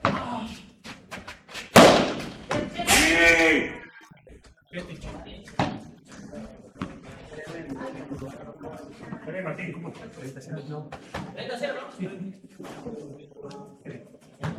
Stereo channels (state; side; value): identical; both; correlation 1.00